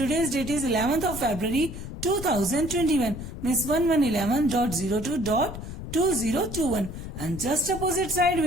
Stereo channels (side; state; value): left; noise; rumble, 9 dB below the sound